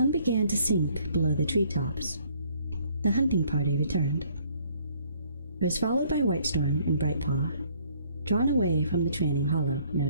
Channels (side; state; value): both; inverted; correlation -0.62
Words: began to sink below the treetops, the hunting party returned. It was followed by Whitestorm and Brightpaw, drawn away from the training hollow, no